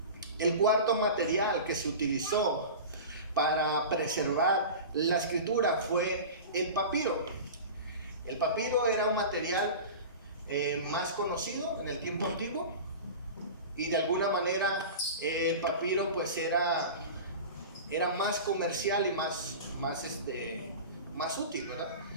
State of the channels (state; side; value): inverted; both; correlation -0.32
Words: material que se utilizó para preservar la escritura fue el papiro. El papiro era un material más conocido en el tiempo antiguo, y de alguna manera el papiro pues era más comercial y más útil, ¿verdad?